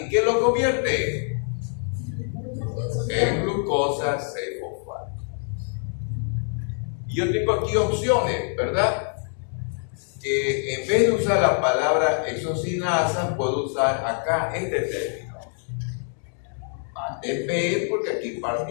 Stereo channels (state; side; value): silent; right; 56 dB below the other